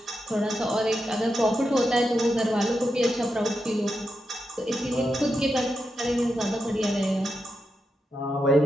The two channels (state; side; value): normal; both; correlation 0.86